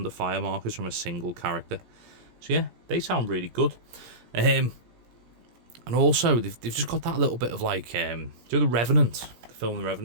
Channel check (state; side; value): late; left; 17 ms